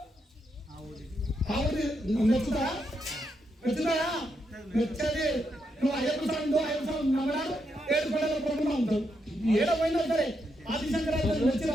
ఆవిడ నచ్చుతాయా నచ్చది. నువ్వు అయ్యప్ప స్వామి నమ్మడాడు 7 పడల ప్రభుత్వం ఉంటావు. ఏడో పోయినా సరే ఆదిశంకరాచార్య వచ్చిన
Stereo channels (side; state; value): both; normal; correlation 0.81